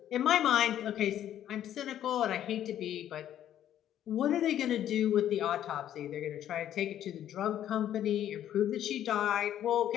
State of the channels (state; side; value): quieter; right; 11.2 dB